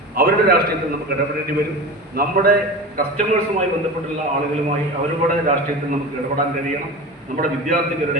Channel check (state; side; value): normal; both; correlation 0.30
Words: അവരുടെ രാഷ്ട്രീയത്തിൽ നമുക്ക് ഇടപെടേണ്ടി വരും. നമ്മുടെ കസ്റ്റമേഴ്സുമായി ബന്ധപ്പെട്ടുള്ള ആളുകളുമായി അവരുടെ രാഷ്ട്രീയത്തിൽ നമുക്ക് ഇടപെടാൻ കഴിയണം. നമ്മുടെ